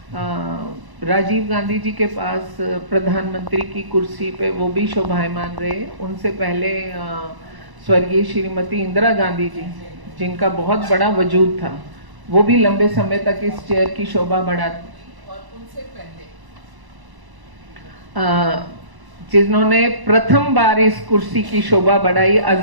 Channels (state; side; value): late; left; 1.0 ms